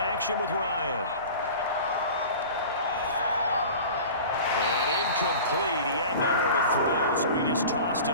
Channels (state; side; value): inverted; both; correlation -0.38